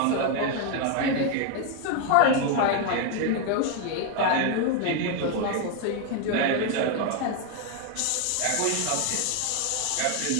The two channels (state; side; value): different; both; correlation 0.01